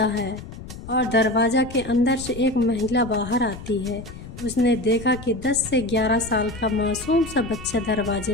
है और दरवाजा के अंदर से एक महिला बाहर आती है। उसने देखा कि 10 से 11 साल का मासूम सा बच्चा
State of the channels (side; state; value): left; noise; rumble, 13 dB below the sound